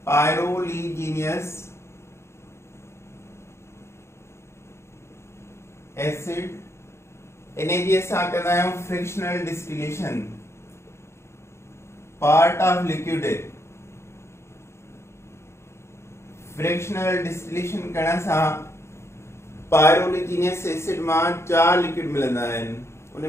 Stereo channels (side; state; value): right; late; 0.13 ms